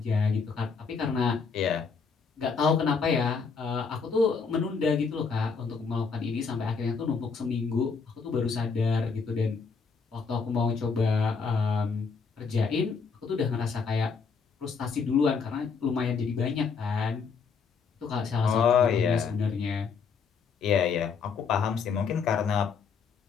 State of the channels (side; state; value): right; quieter; 5.4 dB